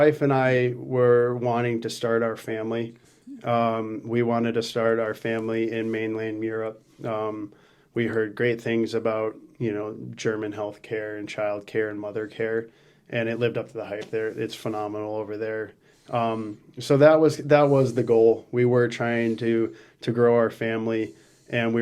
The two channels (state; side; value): identical; both; correlation 1.00